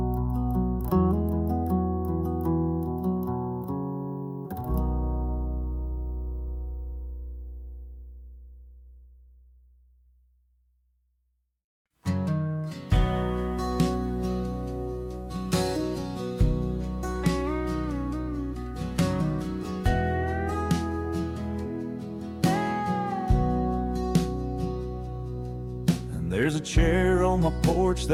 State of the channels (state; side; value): identical; both; correlation 1.00